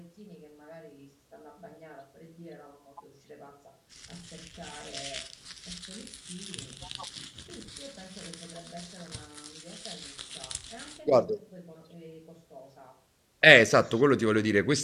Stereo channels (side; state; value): both; identical; correlation 1.00